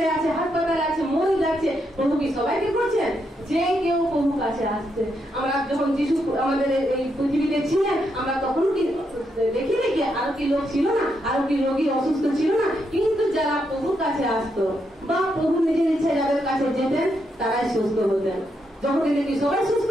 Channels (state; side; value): normal; both; correlation 0.80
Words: আছে, হাসপাতালে আছে, মরে যাচ্ছে, প্রভু কি সবাইকে করছেন? যে কেউ প্রভু কাছে আসছে। আমরা যখন যিশু আমাদের এই পৃথিবীতে ছিলেন, আমরা তখন কি দেখি নাকি আরো কি লোক ছিল না, আরো কি রোগী অসুস্থ ছিল না? কিন্তু যারা প্রভুর কাছে আসতো বা প্রভু নিজের ইচ্ছা যাদের কাছে যেতেন, তারাই সুস্থ হতেন। যখন কি সবাই সুস্থ